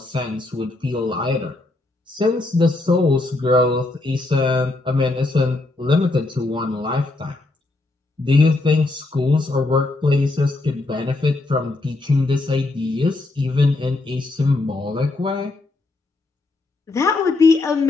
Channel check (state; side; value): quieter; right; 3.0 dB